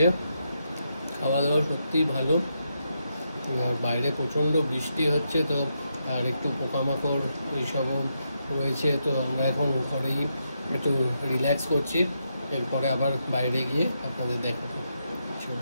খাওয়া দাওয়া সত্যিই ভালো। আর বাইরে প্রচণ্ড বৃষ্টি হচ্ছে, তো আর একটু পোকামাকড় এইসবও রয়েছে। তো আমরা এখন ঘরেই একটু রিল্যাক্স করছি, এরপরে আবার বাইরে গিয়ে আপনাদের দেখাবো।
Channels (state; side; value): inverted; both; correlation -0.82